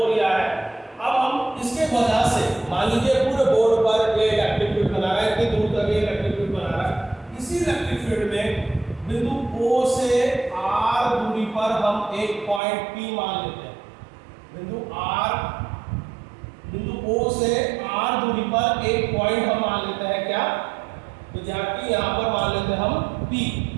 लिया है। अब हम इसके वजह से मान लीजिए पूरे बोर्ड पर ये इलेक्ट्रिक फील्ड बना रहा है, इतनी दूर तक ये इलेक्ट्रिक फील्ड बना रहा है। इसी इलेक्ट्रिक फील्ड में बिंदु O से R दूरी पर हम एक पॉइंट P मान लेते हैं। बिंदु O से R दूरी पर एक पॉइंट हम मान लेते हैं, क्या विद्यार्थी, यहाँ पर मान लेते हैं हम P।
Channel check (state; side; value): drops out; left; at 12.6 s